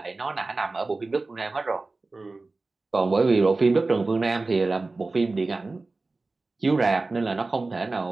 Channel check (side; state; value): left; quieter; 3.4 dB